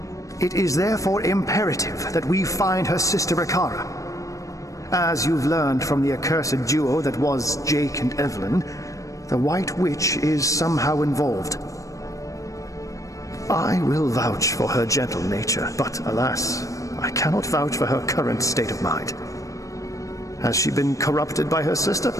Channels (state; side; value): late; right; 0.16 ms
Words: It is therefore imperative that we find her sister Ikara. As you've learned from the accursed duo that was Jake and Evelyn, the White Witch is somehow involved. I will vouch for her gentle nature, but alas, I cannot vouch for her current state of mind. Has she been corrupted by her sister,